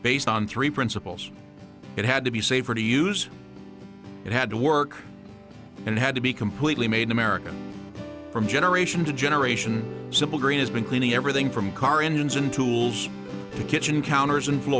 based on 3 principles. It had to be safer to use, it had to work, and it had to be completely made in America. From generation to generation, Simple Green has been cleaning everything from car engines and tools to kitchen counters and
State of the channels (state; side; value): identical; both; correlation 1.00